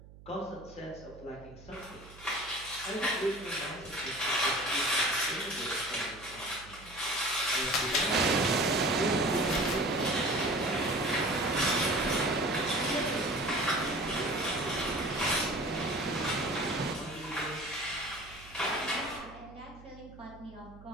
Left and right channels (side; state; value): right; noise; hum, 19 dB below the sound